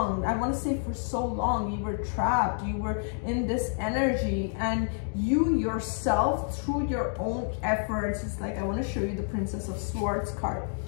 I want to say for so long, you were trapped, you were in this energy, and you yourself, through your own efforts, it's like, I want to show you the Princess of Swords card.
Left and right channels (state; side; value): silent; right; 59 dB below the other